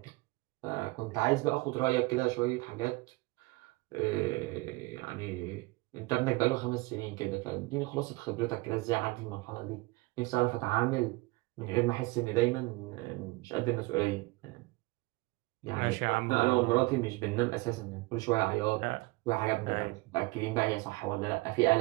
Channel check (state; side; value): quieter; left; 23.1 dB